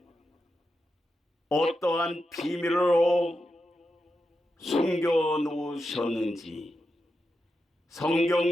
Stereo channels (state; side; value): normal; both; correlation 0.88